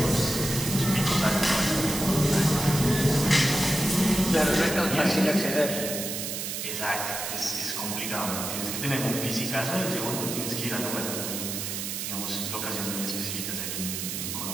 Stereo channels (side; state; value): right; noise; hiss, 4 dB below the sound